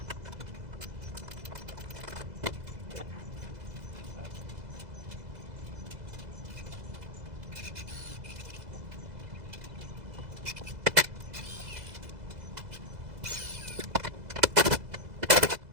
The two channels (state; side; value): late; left; 2.0 ms